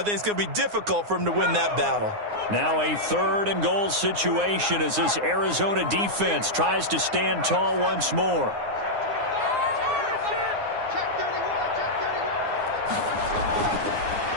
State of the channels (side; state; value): left; late; 9.7 ms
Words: think it's going to be difficult for him to win that battle. Now a 3rd and goal situation as this Arizona defense tries to stand tall once more.